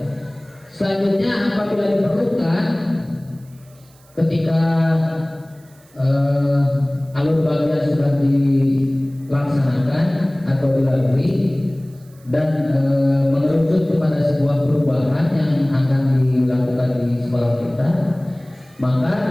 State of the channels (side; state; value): right; noise; hiss, 30 dB below the sound